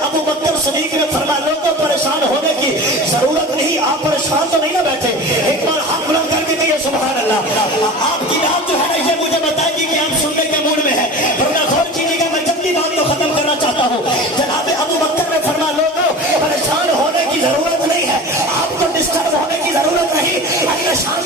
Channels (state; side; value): normal; both; correlation 0.34